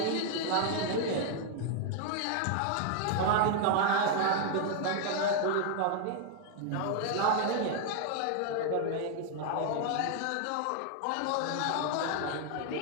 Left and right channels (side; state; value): both; different; correlation 0.00